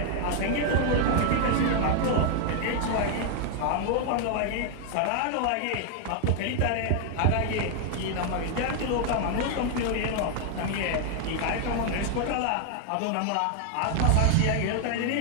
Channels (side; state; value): both; different; correlation 0.00